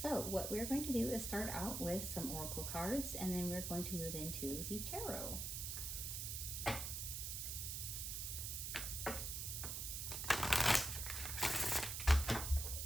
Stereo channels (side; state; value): right; noise; hiss, 3 dB below the sound